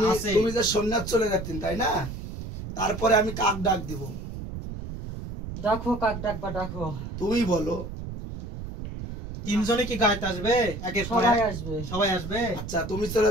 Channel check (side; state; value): right; noise; rumble, 8 dB below the sound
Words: আছে, তুমি যে সন্ন্যাস চলে যাচ্ছেন তাই না? তারপরে আমি কাক ডাক দিব, ডাকো, কাক ডাকবা ডাকো। তুমি বলো। 3 জনে কি গাইতে আসবে? একের পর সবাই এক? আসবে। সবাই আসবে। আচ্ছা, তুমি চলে